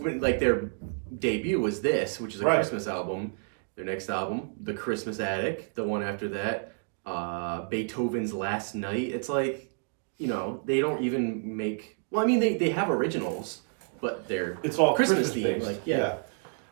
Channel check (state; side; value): silent; left; 58 dB below the other